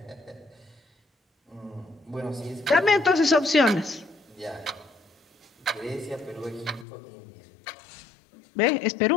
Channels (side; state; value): right; drops out; at 6.9 s